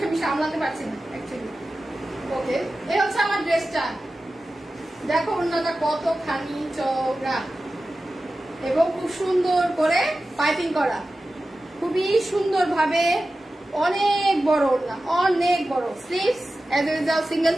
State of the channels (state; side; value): normal; both; correlation 0.95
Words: আমি সামলাতে পারছি না অ্যাকচুয়ালি। ওকে, এই হচ্ছে আমার ড্রেসটা। দেখো ওড়নাটা কতখানি চওড়া এবং খুব সুন্দর করে পাইপিং করা, খুবই সুন্দর ভাবে। অনেক বড় ওড়না, অনেক বড়। Sleeves as usual single